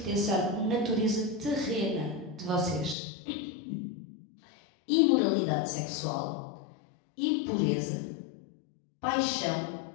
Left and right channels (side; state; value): right; drops out; at 3.0 s